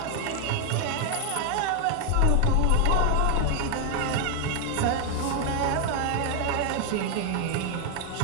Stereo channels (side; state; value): both; different; correlation 0.00